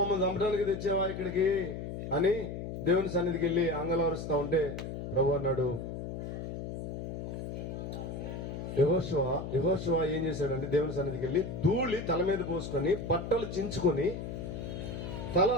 చంపడానికి తెచ్చావా ఇక్కడికి అని దేవుని సన్నిధికి వెళ్ళి అంగలారుస్తా ఉంటే ప్రభు అన్నాడు, యెహోషువ ఏం చేశాడంటే దేవుని సన్నిధికి వెళ్ళి ధూళి తల మీద పోసుకొని బట్టలు చించుకొని తల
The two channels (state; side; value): noise; left; hum, 6 dB below the sound